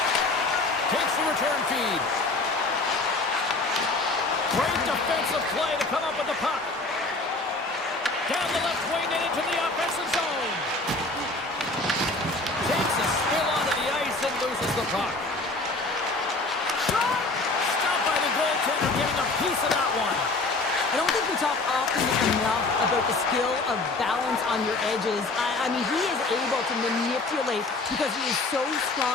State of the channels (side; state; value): right; quieter; 3.2 dB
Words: Takes the return feed. Great defensive play to come up with the puck. Down the left wing and into the offensive zone. Takes a spill onto the ice and loses the puck. Shot! Stopped by the goaltender, getting a piece of that one. I don't think we talk often enough about the skill of balance on your edges. I mean, he is able to manipulate because he is so